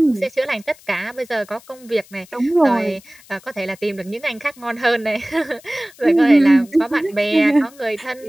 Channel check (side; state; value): left; noise; hiss, 25 dB below the sound